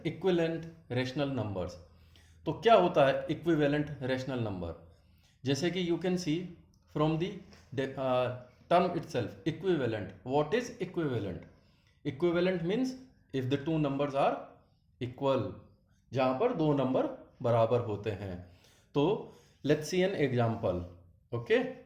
equivalent rational numbers. तो क्या होता है equivalent rational number? जैसे कि you can see from the term itself equivalent. What is equivalent? Equivalent means if the two numbers are equal, जहां पर दो नंबर बराबर होते हैं. तो let's see an example. Okay,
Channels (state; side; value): identical; both; correlation 1.00